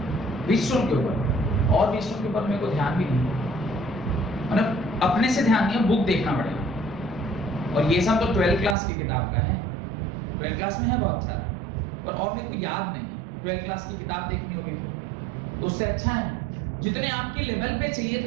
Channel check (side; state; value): left; drops out; at 8.8 s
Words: व्हीटस्टोन के ऊपर और व्हीटस्टोन के ऊपर मेरे को ध्यान भी नहीं है, मतलब अपने से ध्यान नहीं है, बुक देखना पड़ेगा। और ये सब तो 12th क्लास की किताब का है, 12th क्लास में है बहुत सारा, और मेरे को याद नहीं है। 12th क्लास की किताब देखनी होगी तो उससे अच्छा है जितने आपके लेवल पे चाहिए